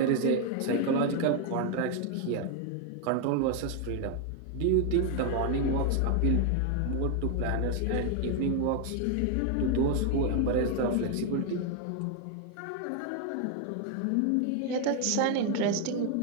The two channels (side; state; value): both; different; correlation 0.01